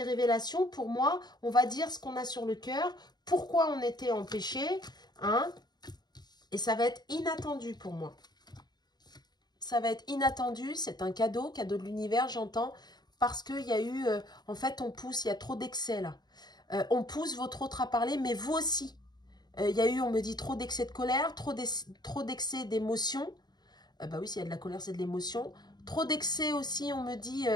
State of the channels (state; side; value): late; right; 0.20 ms